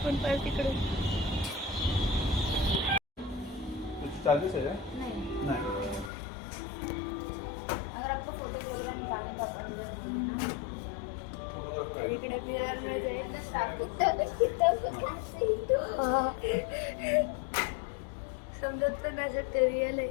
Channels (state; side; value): drops out; right; at 6.1 s